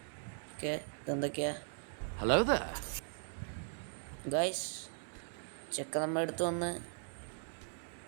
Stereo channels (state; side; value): silent; left; digital silence